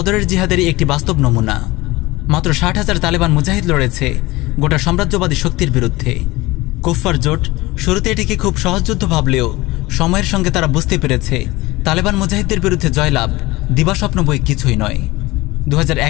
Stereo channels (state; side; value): quieter; right; 20.4 dB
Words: জিহাদেরই একটি বাস্তব নমুনা। মাত্র 60,000 তালেবান মুজাহিদ লড়েছে গোটা সাম্রাজ্যবাদী শক্তির বিরুদ্ধে। কুফার জোট শুরুতে এটিকে খুব সহজ যুদ্ধ ভাবলেও সময়ের সঙ্গে তারা বুঝতে পেরেছে তালেবান মুজাহিদদের বিরুদ্ধে জয়লাভ দিবাস্বপ্ন বই কিছুই নয়।